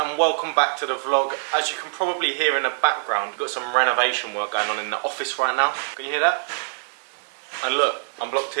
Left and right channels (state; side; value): silent; left; digital silence